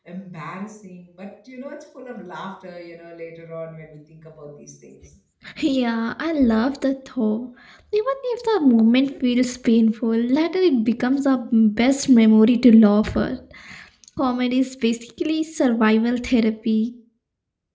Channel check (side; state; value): both; identical; correlation 1.00